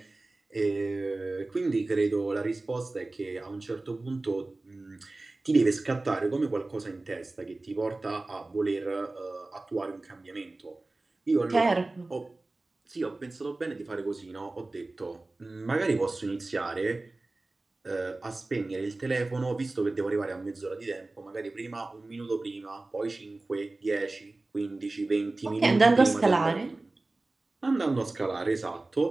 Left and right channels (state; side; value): quieter; left; 3.1 dB